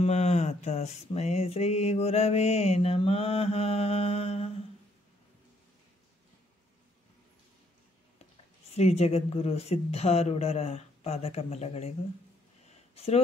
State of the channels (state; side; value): normal; both; correlation 0.68